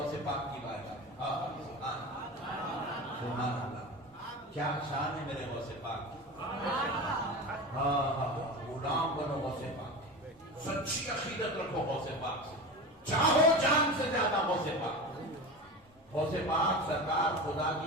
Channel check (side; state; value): both; normal; correlation 0.28